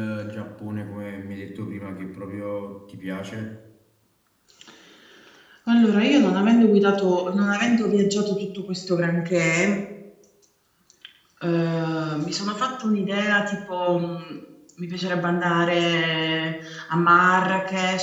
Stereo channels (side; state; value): both; identical; correlation 1.00